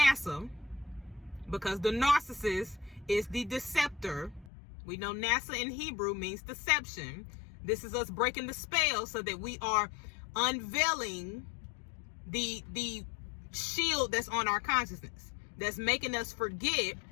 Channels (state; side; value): drops out; right; at 4.5 s